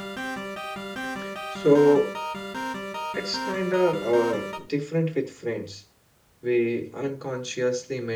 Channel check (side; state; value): both; identical; correlation 1.00